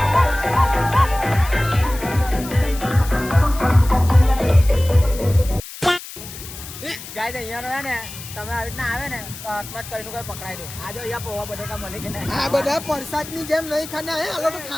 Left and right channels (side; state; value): left; noise; hiss, 13 dB below the sound